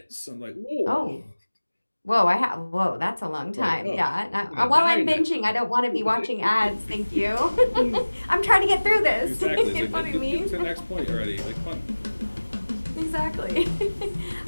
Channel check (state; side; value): inverted; both; correlation -1.00